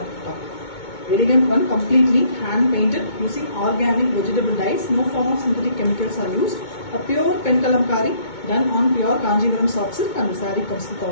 Elegant one, completely hand painted using organic vegetable dyes. No form of synthetic chemicals are used. A pure pen kalamkari done on pure Kanjivaram soft silk, and the saree comes with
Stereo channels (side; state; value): right; late; 2.2 ms